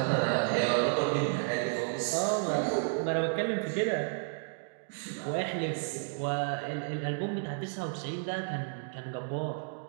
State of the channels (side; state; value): left; silent; digital silence